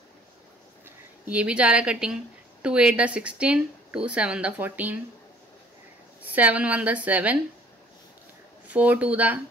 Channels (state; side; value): normal; both; correlation 0.56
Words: ये भी जा रहा है कटिंग। 2 8 16, 2 7 दा 14, 7 1 दा 7, 4 2 दा